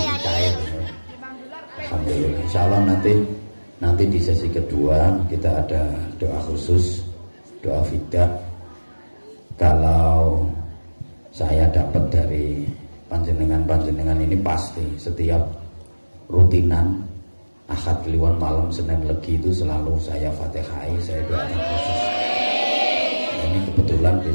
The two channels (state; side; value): inverted; both; correlation -1.00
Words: Alhamdulillah. Insya Allah nanti di sesi kedua kita ada doa khusus, doa fidah. Kalau saya dapat dari panjenengan ini pasti setiap rutinan Ahad Kliwon malam Senin Legi itu selalu saya Fatihai, saya doakan khusus. Ini kebetulan